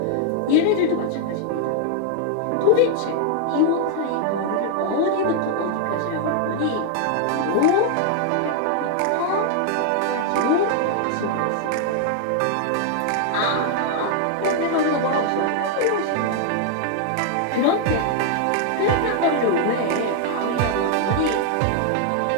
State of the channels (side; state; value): both; different; correlation 0.00